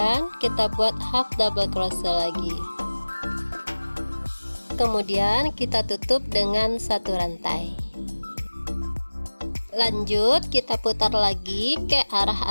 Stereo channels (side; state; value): both; inverted; correlation -1.00